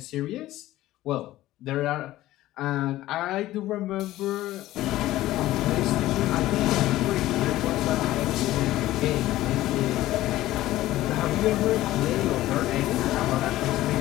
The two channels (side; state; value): right; quieter; 15.6 dB